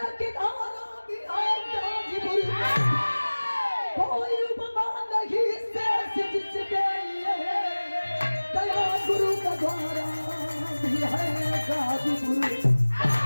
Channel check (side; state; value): both; inverted; correlation -1.00